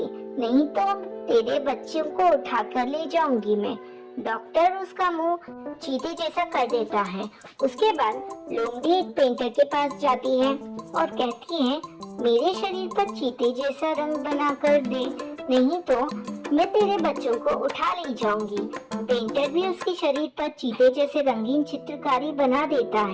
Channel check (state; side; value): identical; both; correlation 1.00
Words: नहीं तो तेरे बच्चों को उठा कर ले जाऊंगी मैं। डॉक्टर उसका मुंह चीते जैसा कर देता है। उसके बाद लोमड़ी एक पेंटर के पास जाती है और कहती है, मेरे शरीर पर चीते जैसा रंग बना कर दे, नहीं तो मैं तेरे बच्चों को उठा ले जाऊंगी। पेंटर भी उसके शरीर पर चीते जैसे रंगीन चित्रकारी बना देता